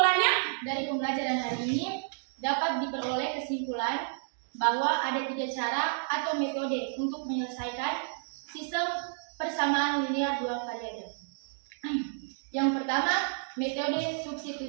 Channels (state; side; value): silent; left; digital silence